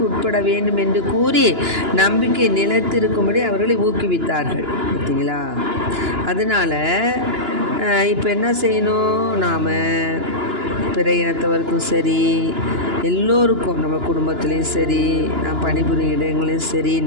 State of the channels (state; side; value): late; left; 2.9 ms